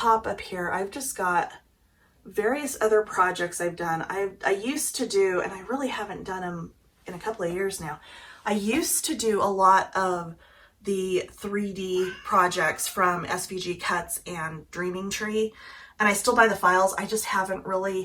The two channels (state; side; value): identical; both; correlation 1.00